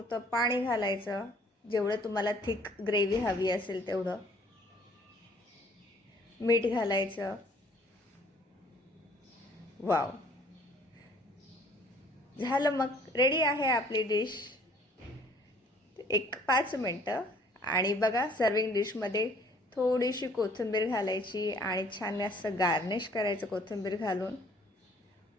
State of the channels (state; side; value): normal; both; correlation 0.58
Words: पाणी घालायचं, जेवढं तुम्हाला थिक ग्रेव्ही हवी असेल तेवढं. मीठ घालायचं. वाव, झालं, मग रेडी आहे आपली डिश. एक 5 मिनटं आणि बघा सर्विंग डिशमध्ये थोडीशी कोथिंबीर घालायची आणि छान असं गार्निश करायचं कोथिंबीर घालून.